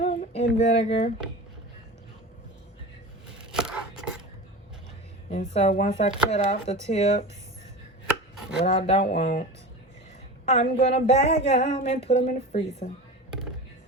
in vinegar. And so once I cut off the tips, what I don't want, I'm gonna bag them and put them in the freezer.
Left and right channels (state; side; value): normal; both; correlation 0.31